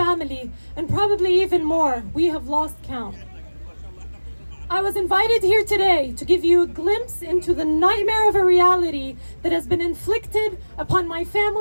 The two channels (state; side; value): inverted; both; correlation -1.00